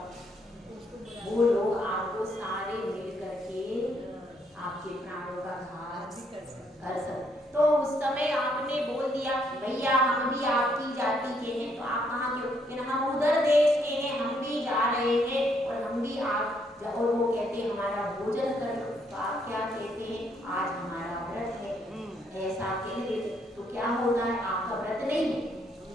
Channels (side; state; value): both; normal; correlation 0.72